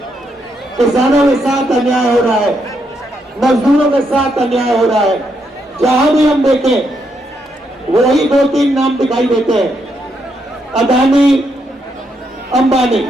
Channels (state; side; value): normal; both; correlation 0.78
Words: किसानों के साथ अन्याय हो रहा है, मजदूरों के साथ अन्याय हो रहा है। जहां भी हम देखें वही 2-3 नाम दिखाई देते हैं, अदानी अंबानी,